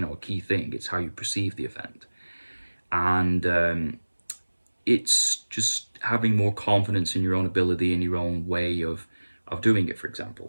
key thing. It's how you perceive the event, and it's just having more confidence in your own ability and your own way of doing it. For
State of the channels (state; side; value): inverted; both; correlation -1.00